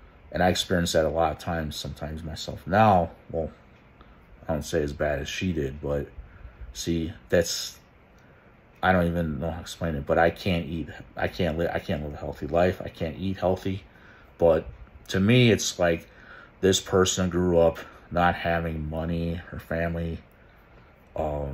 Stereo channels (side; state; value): both; identical; correlation 1.00